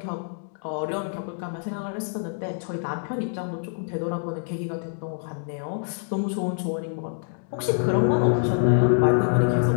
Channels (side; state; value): right; silent; digital silence